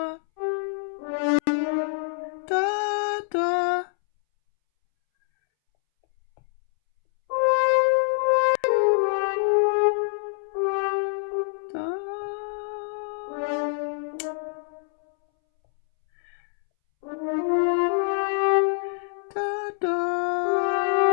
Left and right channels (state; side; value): silent; right; 62 dB below the other